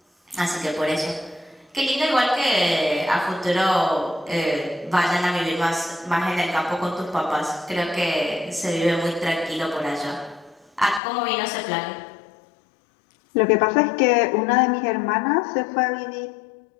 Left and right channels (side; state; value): right; drops out; at 11.0 s